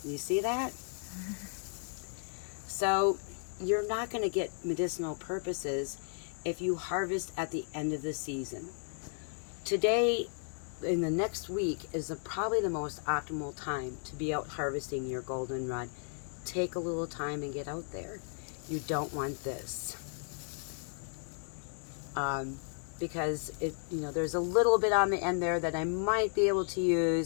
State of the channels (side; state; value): right; silent; 55 dB below the other